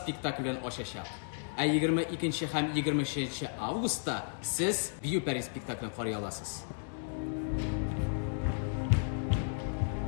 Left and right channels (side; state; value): right; silent; digital silence